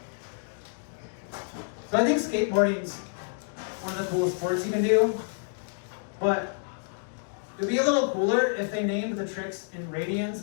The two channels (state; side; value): silent; right; 59 dB below the other